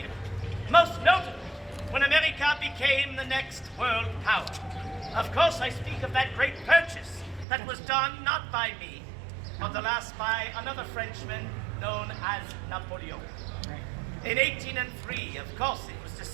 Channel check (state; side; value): drops out; left; at 7.5 s